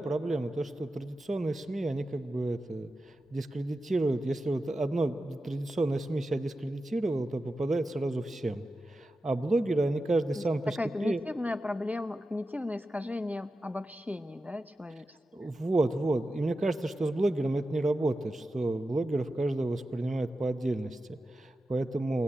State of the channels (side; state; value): both; normal; correlation 0.92